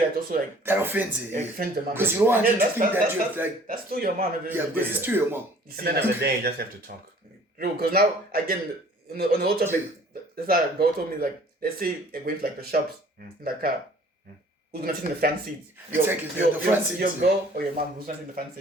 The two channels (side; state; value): both; normal; correlation 0.53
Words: also like that offends it. Offends the mom. Because you don't want to think that you're like that's still your mom. Yeah, because it's still your mom. At the end of the day, you just have to talk. Because now again on the whole topic, that's how a girl told me like, let's say you're going to like the shops in the car. Who's gonna sit in the front seat? Exactly, the front seat. Your girl or your mom? Who's gonna sit in the front